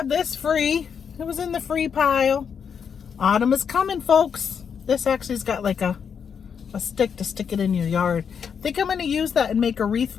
this free. It was in the free pile. Autumn is coming, folks. This actually's got like a stick to stick it in your yard. I think I'm going to use that and make a wreath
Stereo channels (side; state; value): right; quieter; 7.0 dB